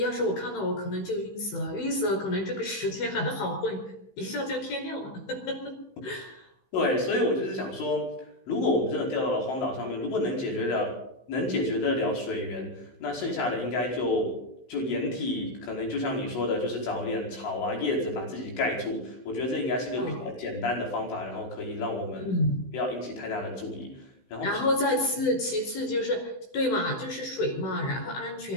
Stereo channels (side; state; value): right; late; 15 ms